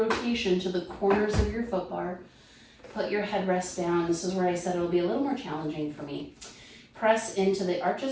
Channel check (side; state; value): both; identical; correlation 1.00